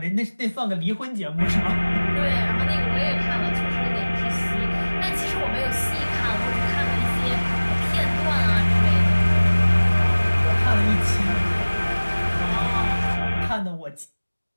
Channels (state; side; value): inverted; both; correlation -1.00